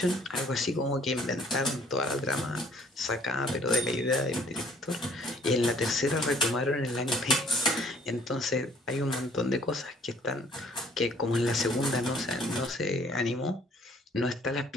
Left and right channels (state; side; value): normal; both; correlation 0.59